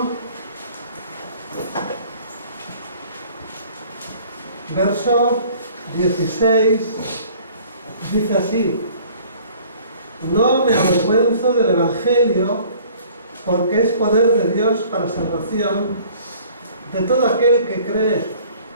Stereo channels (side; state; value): both; inverted; correlation -0.52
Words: verso 16. Dice así: no me avergüenzo del Evangelio, porque es poder de Dios para salvación de todo aquel que cree,